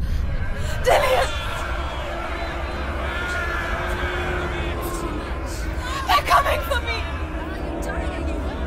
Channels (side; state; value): both; identical; correlation 1.00